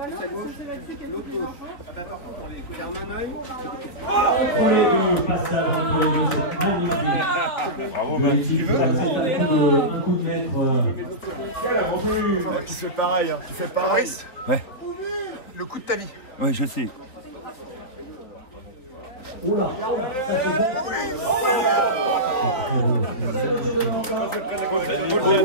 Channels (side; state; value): right; late; 4.0 ms